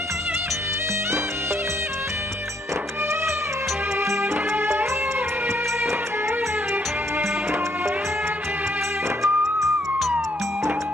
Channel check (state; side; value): normal; both; correlation 0.71